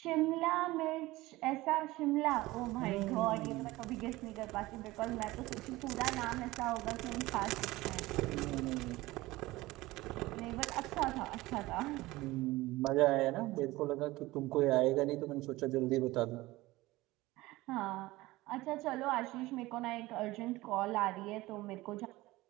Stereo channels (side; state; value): left; quieter; 19.1 dB